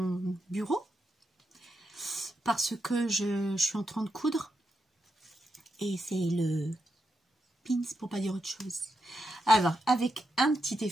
bureau. Parce que je suis en train de coudre. Et c'est le pins pour pas dire autre chose. Alors, avec un petit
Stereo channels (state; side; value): normal; both; correlation 0.84